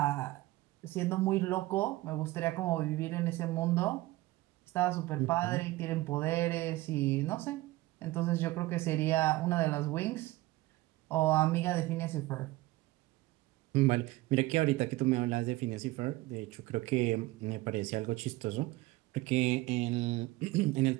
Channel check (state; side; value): quieter; left; 18.8 dB